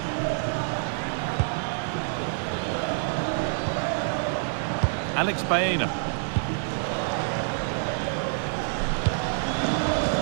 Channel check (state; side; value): silent; left; digital silence